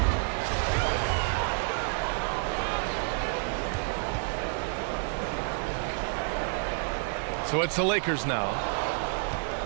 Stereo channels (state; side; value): silent; left; 58 dB below the other